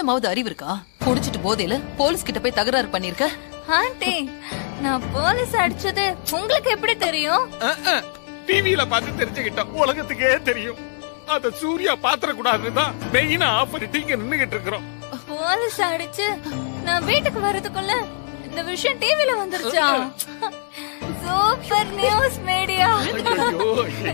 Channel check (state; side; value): silent; right; digital silence